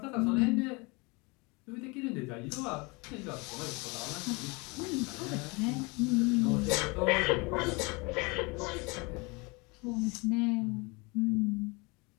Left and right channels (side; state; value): right; quieter; 27.7 dB